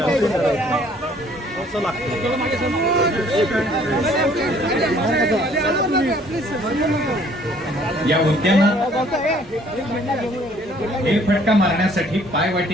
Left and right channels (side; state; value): both; normal; correlation 0.59